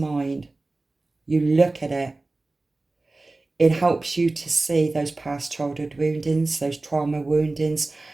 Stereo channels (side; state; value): left; quieter; 3.1 dB